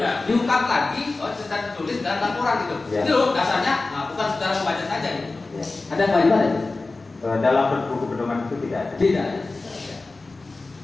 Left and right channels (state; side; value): quieter; right; 3.5 dB